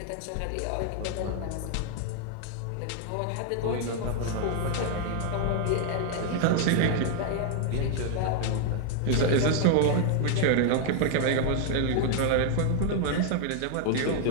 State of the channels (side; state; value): both; different; correlation 0.00